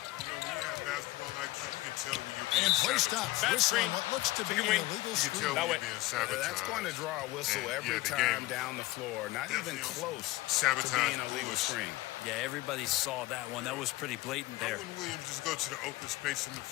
You can tell when you're being and play stops. Whistle on what looks to be an illegal screen. That's going to draw a whistle every time down the floor. Not even close to being a legal screen. Yeah, everybody saw that one. That was pretty blatant there. Why wouldn't Williams just go to the open space in the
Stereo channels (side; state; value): right; quieter; 19.1 dB